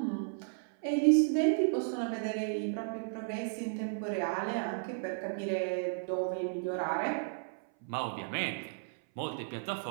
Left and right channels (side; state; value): left; silent; 55 dB below the other